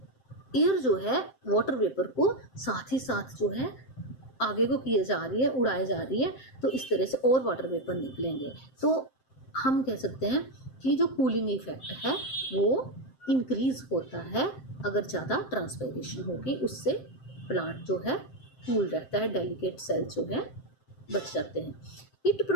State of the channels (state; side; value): late; right; 7.7 ms